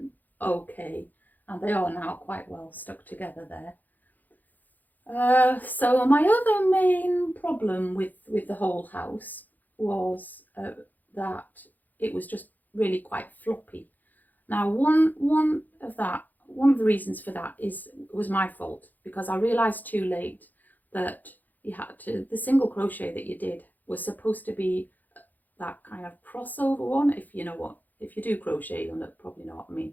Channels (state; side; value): late; right; 0.084 ms